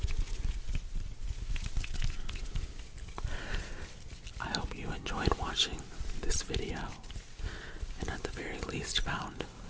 I hope you enjoyed watching this video and at the very least found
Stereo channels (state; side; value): identical; both; correlation 1.00